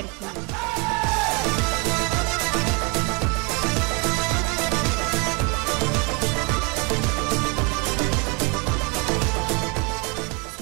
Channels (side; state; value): left; quieter; 31.6 dB